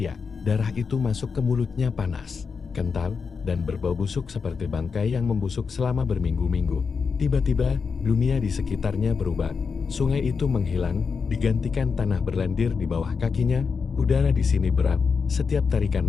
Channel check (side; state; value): right; quieter; 5.5 dB